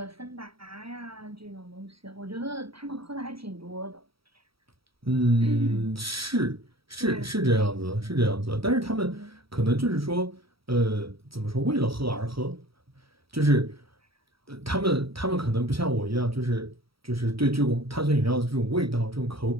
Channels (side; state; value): left; late; 0.75 ms